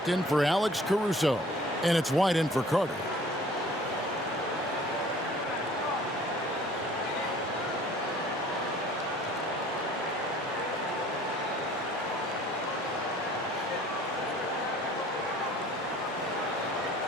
in for Alex Caruso. And it's White in for Carter.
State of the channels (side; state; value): both; normal; correlation 0.51